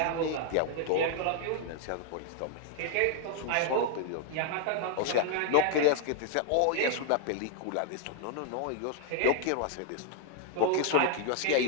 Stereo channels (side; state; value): both; different; correlation 0.00